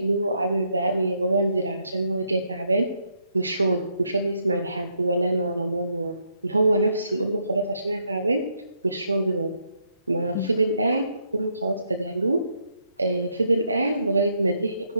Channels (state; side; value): inverted; both; correlation -0.76